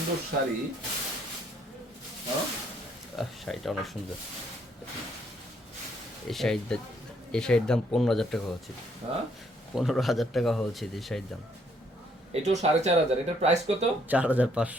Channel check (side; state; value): both; normal; correlation 0.68